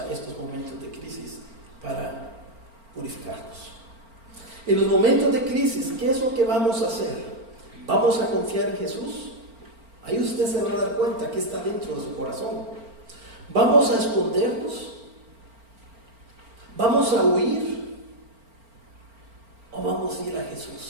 estos momentos de crisis para purificarnos. En los momentos de crisis, ¿qué es lo que vamos a hacer? ¿Vamos a confiar en Jesús? Ahí usted se va a dar cuenta que está dentro de su corazón. ¿Vamos a escondernos? ¿Vamos a huir? ¿O vamos vamos a ir a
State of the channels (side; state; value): left; late; 4.4 ms